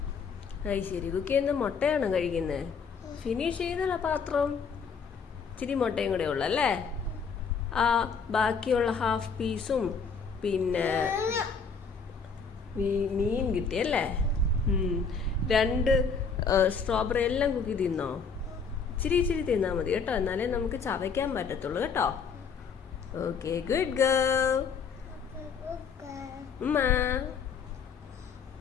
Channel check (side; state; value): right; quieter; 5.6 dB